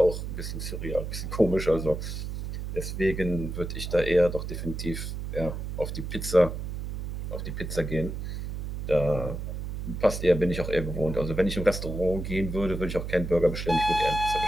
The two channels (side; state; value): right; noise; hum, 5 dB below the sound